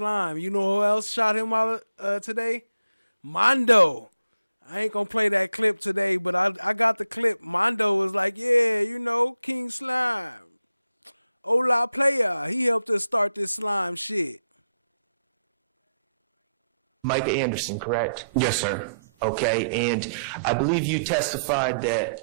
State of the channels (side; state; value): both; inverted; correlation -0.80